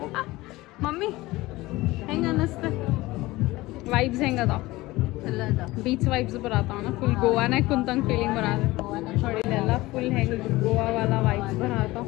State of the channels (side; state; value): right; quieter; 19.4 dB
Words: ಮಮ್ಮಿ ಹೆಂಗ ಅನ್ನಿಸ್ತ? ವೈಬ್ಸ್ ಹೆಂಗ ಅದಾವ? ಬೀಚ್ ವೈಬ್ಸ್ ಬರತ್ತಾವ. ಫುಲ್ ಗೋವಾನಾಗ ಕುಂತಂಗ್ ಫೀಲಿಂಗ್ ಬರತ್ತ ನೋಡಿ. ಇಲ್ಲೆಲ್ಲ ಫುಲ್ ಹೆಂಗ್ ಗೋವಾ ವಾಲ ವೈಬ್ಸ್ ಬರತ್ತಾವ.